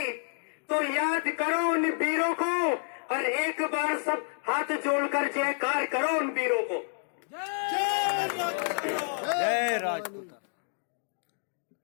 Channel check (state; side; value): silent; right; 58 dB below the other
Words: तो याद करो उन वीरों को, और एक बार सब हाथ जोड़कर जयकार करो उन वीरों को। जय राजपूत।